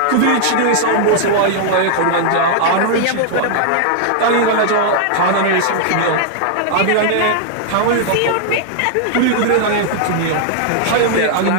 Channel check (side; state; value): both; different; correlation -0.01